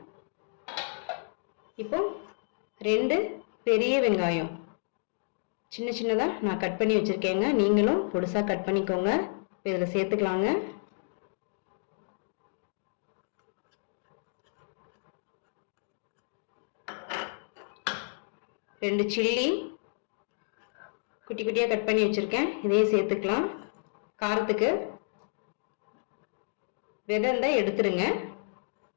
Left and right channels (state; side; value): silent; right; digital silence